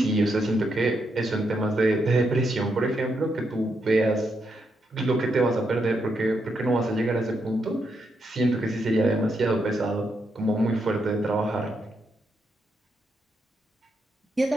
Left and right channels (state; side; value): normal; both; correlation 0.80